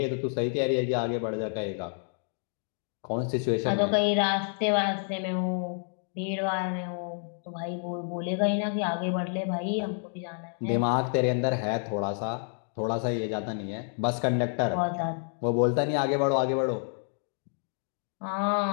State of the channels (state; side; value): silent; right; 56 dB below the other